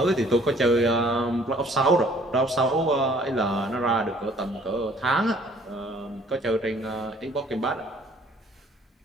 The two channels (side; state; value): both; normal; correlation 0.57